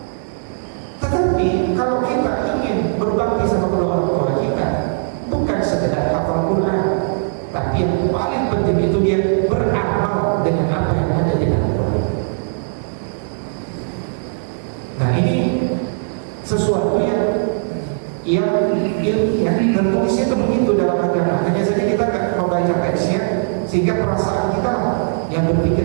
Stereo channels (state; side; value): silent; left; 58 dB below the other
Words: Tetapi kalau kita ingin berbakti sama kedua orang tua kita, bukan sekedar hafal Quran, yang ilmiah dan tulisnya itu begitu dalam agama. Hanya saja kita nggak membaca teksnya sehingga perasaan kita lah yang